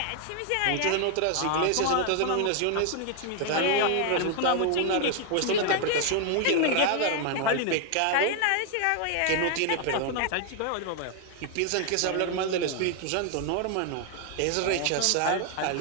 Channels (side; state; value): both; different; correlation 0.00